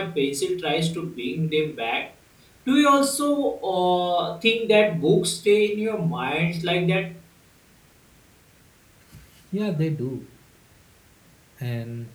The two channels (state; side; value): identical; both; correlation 1.00